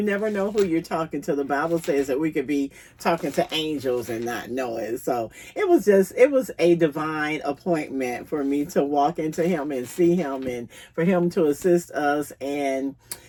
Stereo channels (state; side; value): identical; both; correlation 1.00